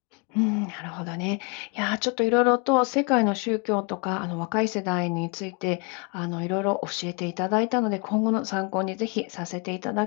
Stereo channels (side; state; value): right; quieter; 32.8 dB